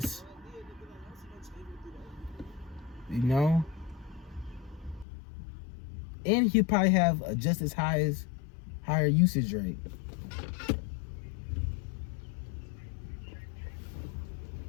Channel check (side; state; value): right; drops out; at 5.1 s